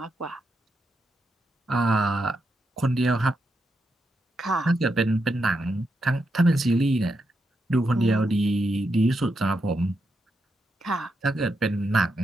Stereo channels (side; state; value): both; normal; correlation 0.83